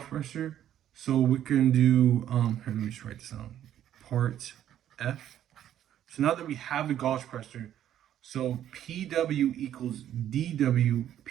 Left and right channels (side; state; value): left; quieter; 11.1 dB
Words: pressure, so we can do, here, let me just write this down, part F. So now that we have the gauge pressure, so PW equals DW